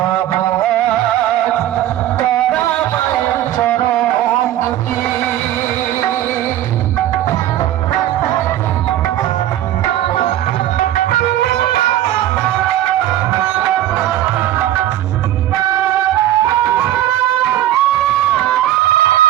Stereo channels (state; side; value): quieter; left; 13.0 dB